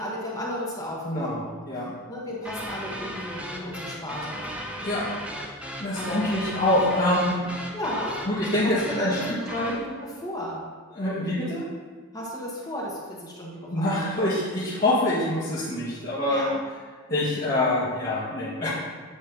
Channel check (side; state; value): both; normal; correlation 0.22